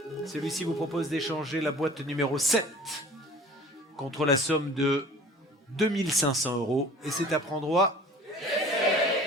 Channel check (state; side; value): normal; both; correlation 0.45